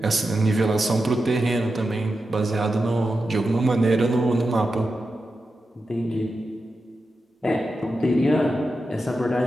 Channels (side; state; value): both; normal; correlation 0.90